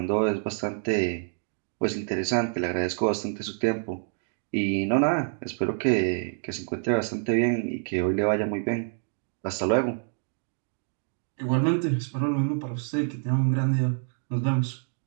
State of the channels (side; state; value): left; silent; 60 dB below the other